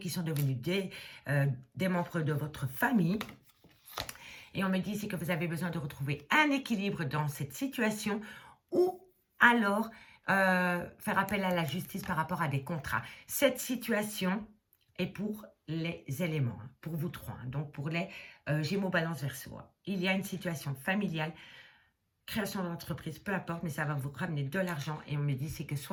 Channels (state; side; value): identical; both; correlation 1.00